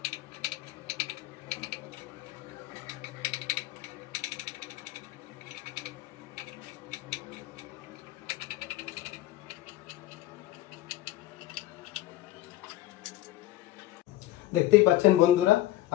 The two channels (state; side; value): quieter; right; 15.2 dB